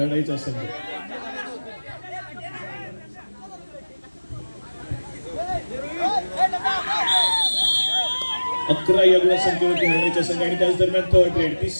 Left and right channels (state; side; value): inverted; both; correlation -1.00